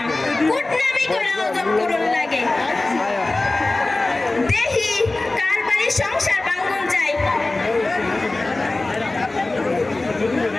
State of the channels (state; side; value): quieter; right; 3.0 dB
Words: কুটনামি করে হজম করুন লাগে। দেখি কার বাড়ির সংসার ভাঙন যায়।